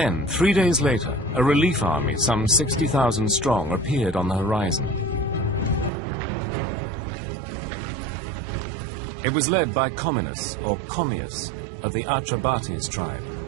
3 days later, a relief army, some 60,000 strong, appeared on the horizon. It was led by Comminus, or Commius, of the Atrebates tribe,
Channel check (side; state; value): left; drops out; at 5.9 s